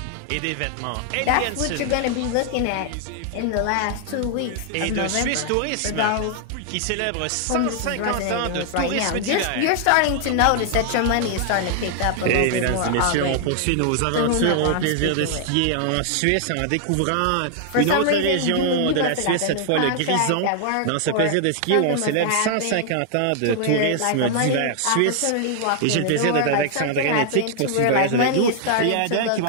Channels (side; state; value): both; different; correlation 0.00